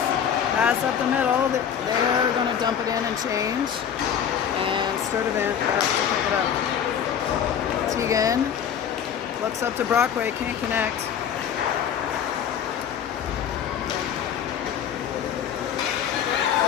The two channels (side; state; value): right; quieter; 8.5 dB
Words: Pass up the middle. They're going to dump it in and change. And Sturdivant has to pick it up. Tegan looks up to Brockway, can't connect.